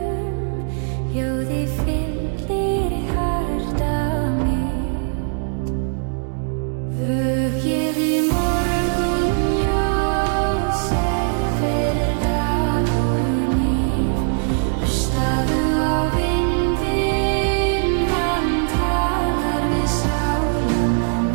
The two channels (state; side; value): silent; left; 59 dB below the other